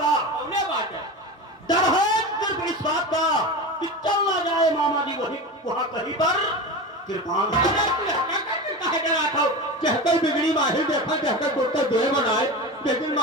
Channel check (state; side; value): normal; both; correlation 0.26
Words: बात है, डर है सिर्फ इस बात का कि चल ना जाए मामा जी वही वहां कहीं पर कृपान। कहकर बिगड़ी माहिर देखा, कहकर कुत्ता दो बनाए, लेकिन